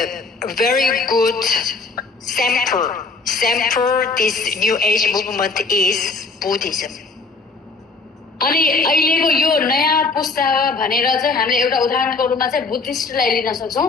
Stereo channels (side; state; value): right; quieter; 4.0 dB